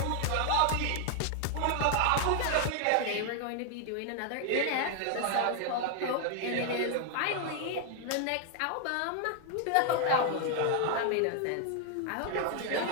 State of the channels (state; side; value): different; both; correlation 0.00